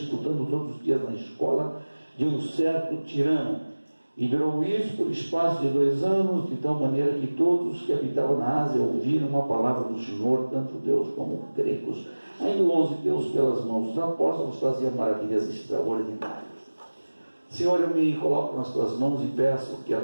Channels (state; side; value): inverted; both; correlation -1.00